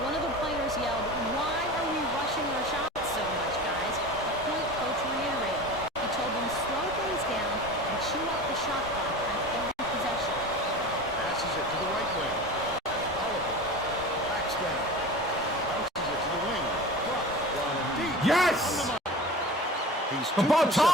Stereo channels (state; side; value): normal; both; correlation 0.35